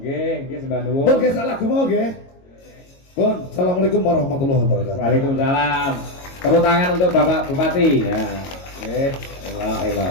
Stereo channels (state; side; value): late; right; 22 ms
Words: Nggih, sembah nuwun. Pun nggih salah mau nggih. Pun, Assalamualaikum warahmatullahi wabarakatuh. Waalaikumsalam. Tepuk tangan untuk Bapak Bupati. Ya. Nggih,